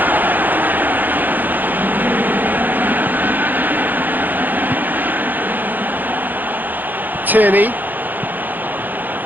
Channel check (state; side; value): late; left; 0.085 ms